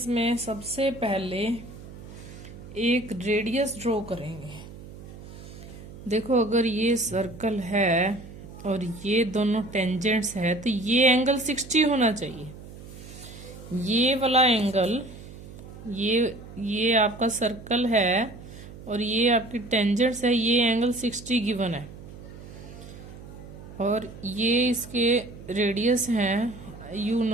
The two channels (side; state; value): right; noise; hum, 15 dB below the sound